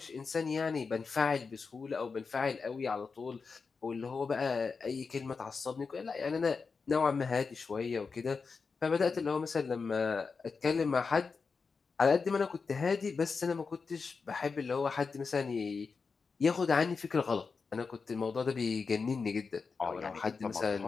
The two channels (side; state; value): right; quieter; 4.9 dB